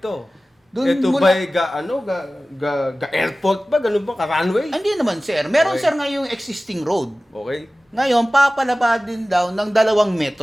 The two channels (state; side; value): normal; both; correlation 0.97